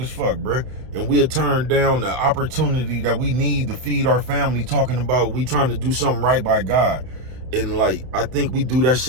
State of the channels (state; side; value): late; left; 31 ms